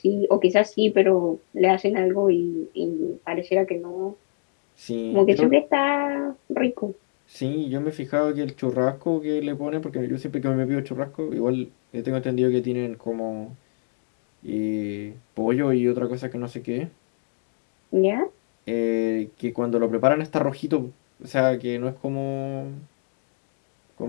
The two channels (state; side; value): silent; right; 61 dB below the other